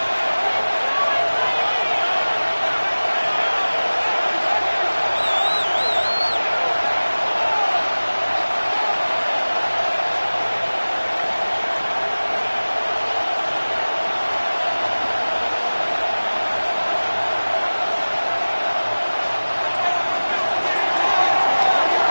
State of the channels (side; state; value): both; inverted; correlation -1.00